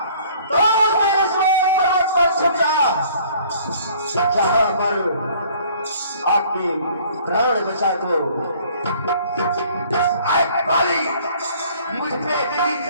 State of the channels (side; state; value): both; inverted; correlation -0.55